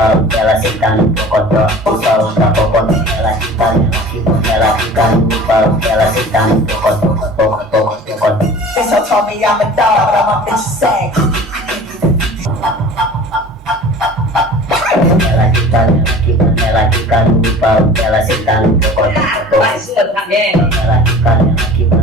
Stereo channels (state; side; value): normal; both; correlation 0.42